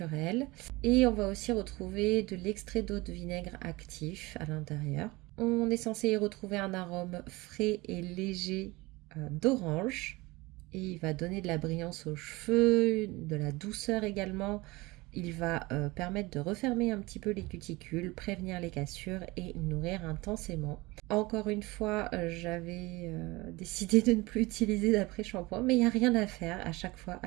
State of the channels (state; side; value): quieter; left; 22.3 dB